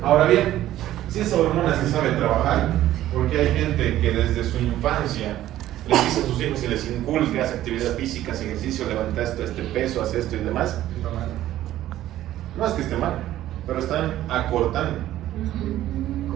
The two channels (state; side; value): quieter; left; 13.6 dB